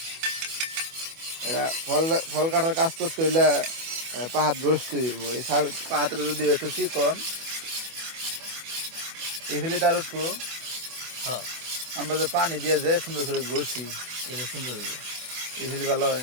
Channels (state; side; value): late; left; 24 ms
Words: এরা ফল ফল কাটার কাজ করতে হইলে পাহাড় গছতে হইব। এই পাহাড়ে যদি একটু চিকন এই ফেলে তার উঠবো। হ্যাঁ, আমরা যে পানি দিয়ে যে সুন্দর করে ঘষি, এটা সুন্দর হইব। এই ফেলে ভালো হয়।